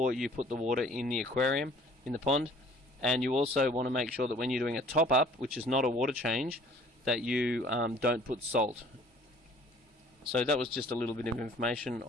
you put the water in the aquarium, in the pond. And you also want to make sure that when you're doing a top-up, which is not a water change, that you don't put salt. So that was just a little bit of information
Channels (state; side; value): normal; both; correlation 0.53